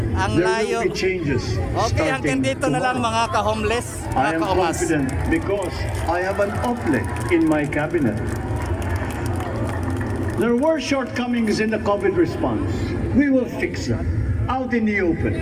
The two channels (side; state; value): both; identical; correlation 1.00